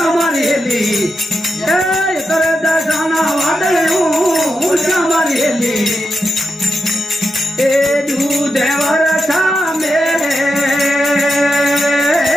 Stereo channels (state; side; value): normal; both; correlation 0.86